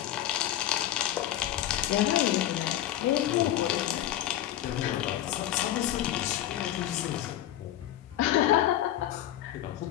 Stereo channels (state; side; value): quieter; right; 12.7 dB